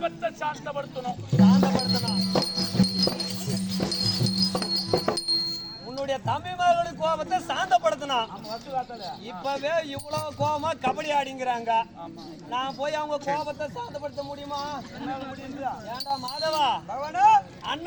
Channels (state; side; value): identical; both; correlation 1.00